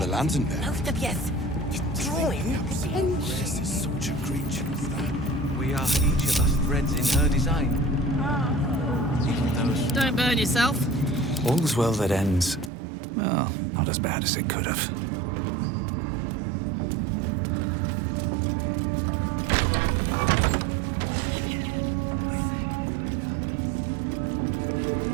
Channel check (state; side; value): drops out; left; at 12.7 s